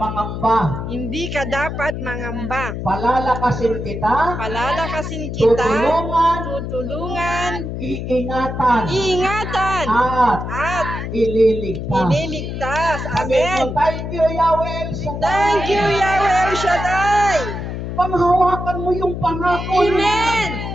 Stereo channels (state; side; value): noise; left; hum, 5 dB below the sound